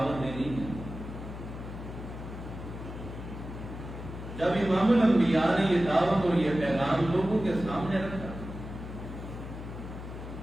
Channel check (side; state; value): left; noise; hum, 10 dB below the sound